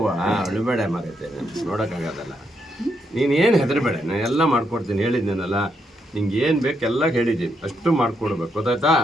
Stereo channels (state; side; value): normal; both; correlation 0.79